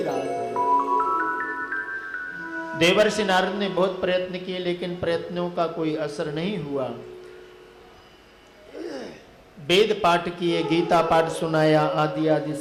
राधे। देवर्षि नारद ने बहुत प्रयत्न किए, लेकिन प्रयत्नों का कोई असर नहीं हुआ। वेद पाठ किए, गीता पाठ सुनाया, आदि आदि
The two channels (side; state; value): both; identical; correlation 1.00